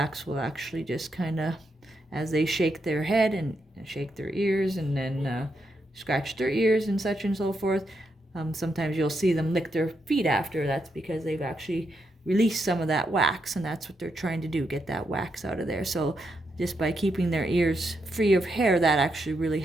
will actually just kind of, as they shake their head and shake their ears and then scratch their ears and such and so forth, sometimes you'll see them lick their feet after. That's because they've actually release some of that wax, and that's what they're trying to do, get that wax out of there. So just by keeping their ears free of hair, that actually really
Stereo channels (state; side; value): normal; both; correlation 0.81